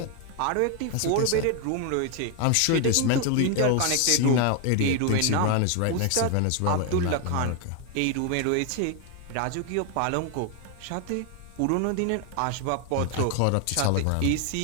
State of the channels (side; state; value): both; different; correlation 0.01